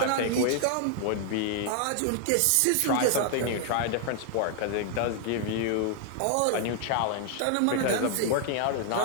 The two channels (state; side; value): different; both; correlation 0.00